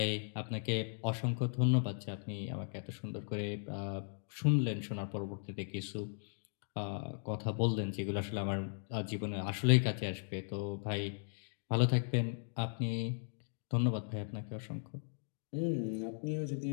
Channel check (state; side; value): silent; right; digital silence